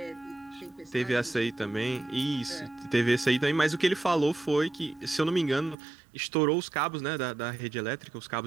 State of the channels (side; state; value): left; drops out; at 5.8 s